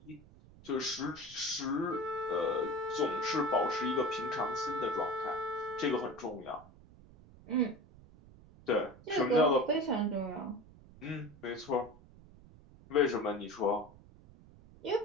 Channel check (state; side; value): noise; right; rumble, 22 dB below the sound